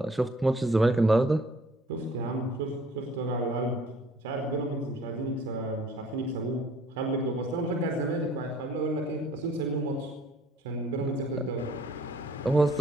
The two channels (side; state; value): both; normal; correlation 0.56